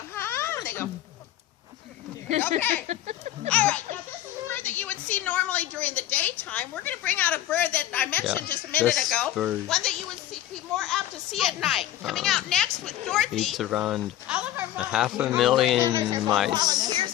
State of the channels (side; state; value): right; quieter; 13.1 dB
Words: huh? And they go, okay. All right, now this is a bird that you would see normally during the daytime. We're going to bring out a bird that I mentioned just a minute ago. One that you would be more apt to see at night. Coming out next with Dorothy. Eats around 500,000 mice. Volunteers,